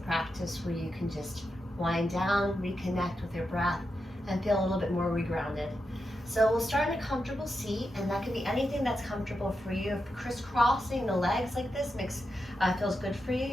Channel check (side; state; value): both; normal; correlation 0.87